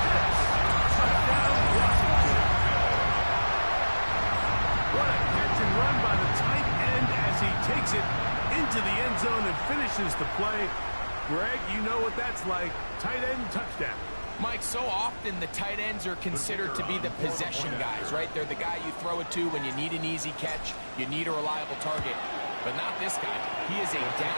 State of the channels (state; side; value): inverted; both; correlation -1.00